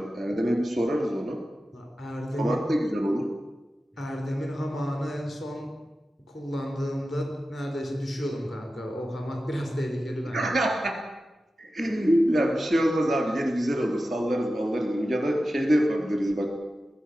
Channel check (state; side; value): normal; both; correlation 0.93